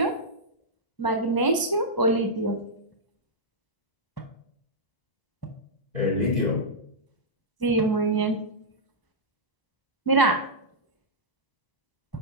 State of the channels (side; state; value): right; late; 1.0 ms